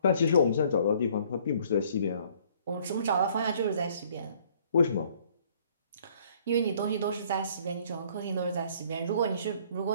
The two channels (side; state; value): both; inverted; correlation -0.59